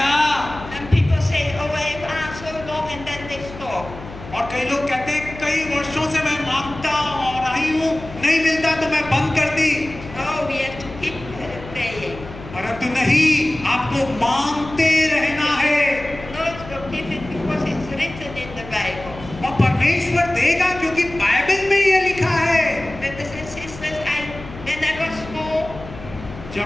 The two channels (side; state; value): left; noise; hum, 14 dB below the sound